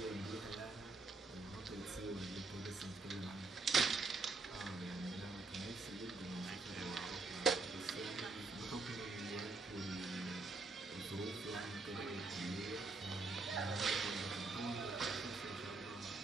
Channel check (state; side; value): quieter; left; 3.7 dB